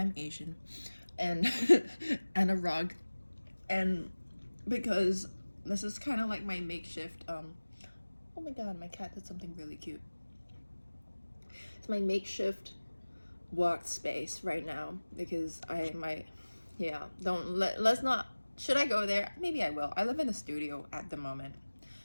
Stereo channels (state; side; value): inverted; both; correlation -1.00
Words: Asian, and and a rug, and because this is kind of like my makeshift oh my god, my cat did something really cute. It's my makeshift workspace right now because let's not, should I go there? Maybe I will. I live in a studio at the moment,